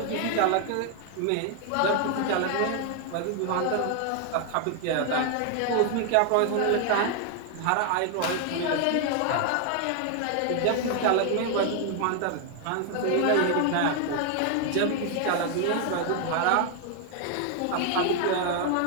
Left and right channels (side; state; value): both; different; correlation 0.00